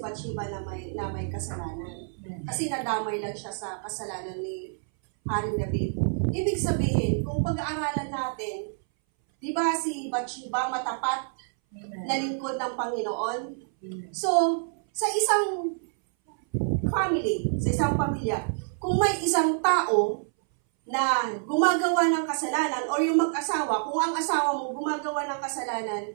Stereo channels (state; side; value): silent; left; 60 dB below the other